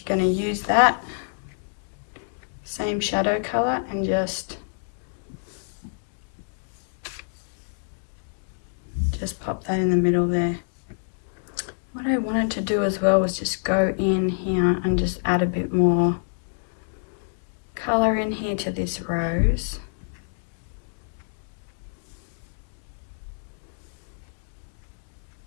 going to use that same shadow color and just pop that in the middle there. What I wanted to do as well was just go in here and just add a bit more color in here to this rose.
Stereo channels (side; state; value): right; silent; digital silence